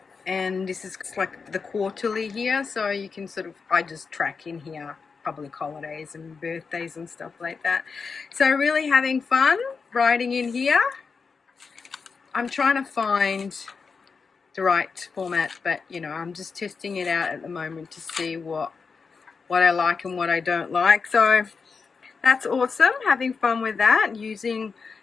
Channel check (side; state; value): right; quieter; 5.1 dB